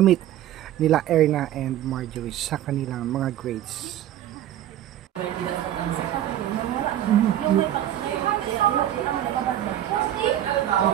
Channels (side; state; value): left; quieter; 12.0 dB